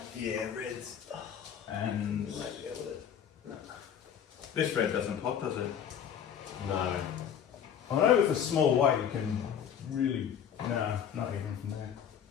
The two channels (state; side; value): quieter; right; 8.6 dB